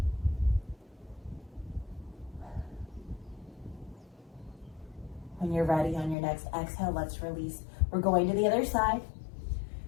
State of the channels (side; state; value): right; drops out; at 6.2 s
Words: When you're ready on your next exhale, let's release. We're going to the other side.